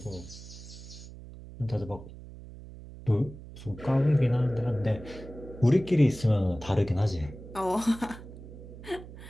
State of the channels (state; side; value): noise; right; hum, 15 dB below the sound